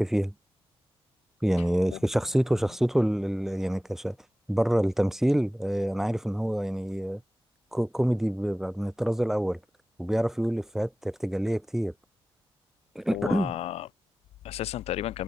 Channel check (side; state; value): both; normal; correlation 0.96